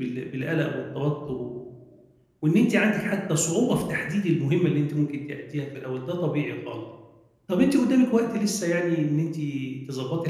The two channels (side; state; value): both; identical; correlation 1.00